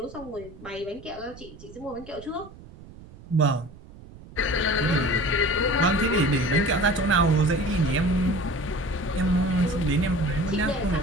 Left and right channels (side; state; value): right; noise; rumble, 19 dB below the sound